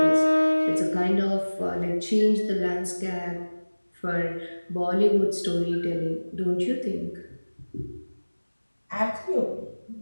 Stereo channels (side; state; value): both; inverted; correlation -1.00